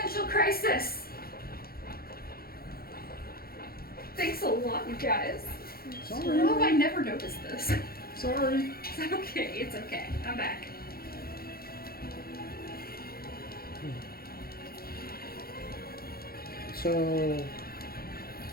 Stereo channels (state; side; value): late; right; 0.44 ms